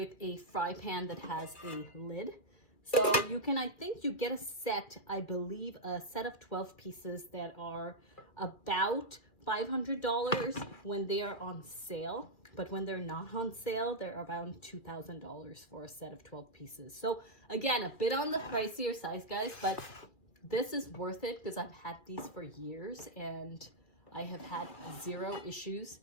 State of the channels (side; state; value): right; late; 2.3 ms